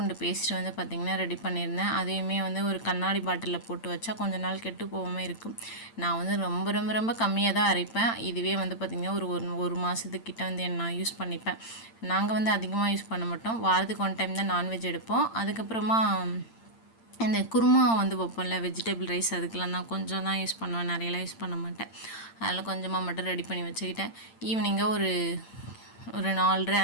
பேஸ்ட் வந்து பார்த்திங்கன்னா ரெடி பண்ணியிருந்தேன். அதையுமே வந்து ஒரு கண்ணாடி பாட்டிலில் போட்டு வச்சா கொஞ்ச நாள் கெட்டு போகாமல் இருக்கும். நான் வந்து ரொம்ப ரொம்ப ரொம்ப கம்மியாக தான் அரைப்பேன். இதுவே வந்து பார்த்திங்கன்னா ஒரு மாதத்துக்கிட்ட வந்து நான் யூஸ் பண்ணிப்பேன். நாங்கள் வந்து அதிகமாக யூஸ் பண்ண மாட்டோம். வாரத்துக்கு 1 டைம் தான் நான்வெஜ் எடுப்போம். அதுக்கப்புறமா இந்த குருமா வந்து வைப்போம்ல, வெஜிடபிள் ரைஸ், அதுக்கெலாம் தான் கொஞ்சம் தான் யூஸ் பண்ணுவேன், நிறையலாம் யூஸ் பண்ண மாட்டேன். அதனால் கொஞ்சமாக மட்டும் ரெடி பண்ணி வச்சுக்கிட்டேன். ஈவினிங்காக ஒரு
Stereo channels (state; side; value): late; right; 8.8 ms